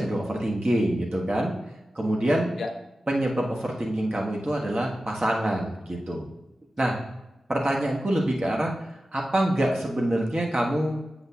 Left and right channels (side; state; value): both; normal; correlation 0.93